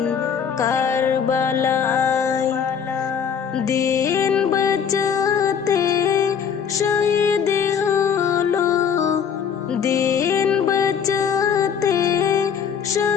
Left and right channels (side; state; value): right; quieter; 7.4 dB